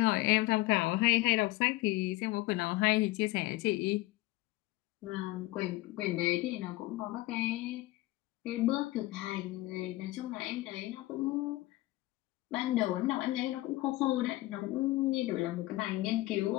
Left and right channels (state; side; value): quieter; right; 18.8 dB